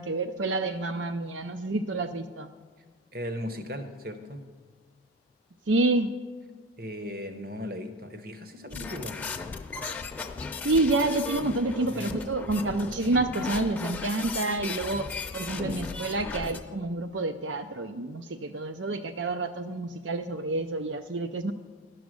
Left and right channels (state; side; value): normal; both; correlation 0.23